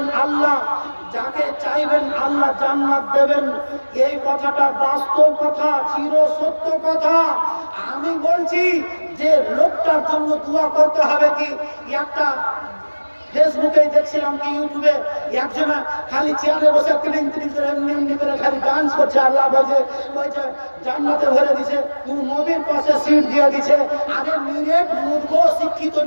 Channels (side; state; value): both; inverted; correlation -1.00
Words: আল্লাহ যাকে চাইবেন আল্লাহ জান্নাত দেবেন এই কথাটা বাস্তব কথা চির সত্য কথা আমি বলছি যে লোকটার জন্য দোয়া করতে হবে কি একটা ফেসবুকে দেখছিলাম কি ইউটিউবে একজনা খালি চেয়ারে বসে তিলিং তিলিং করে এমনি করে খালি ডান্স করছে আল্লাহ বলছে জান্নাতে ভরে দিছে তুই নবীর পাশে সিট দিয়ে দিছে আরে নিরেট মূর্খ শিক্ষিত